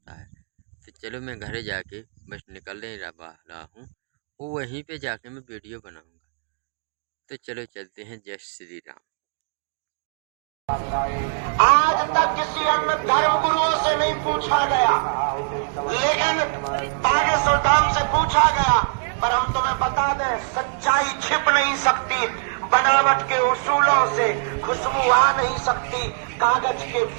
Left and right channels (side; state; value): left; silent; digital silence